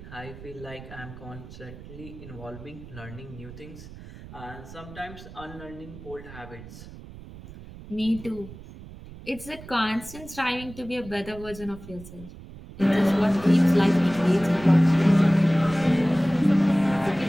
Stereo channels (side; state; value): right; noise; rumble, 16 dB below the sound